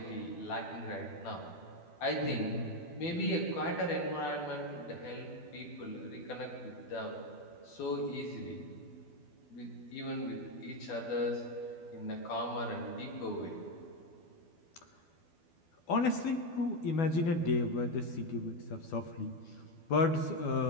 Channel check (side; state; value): right; late; 12 ms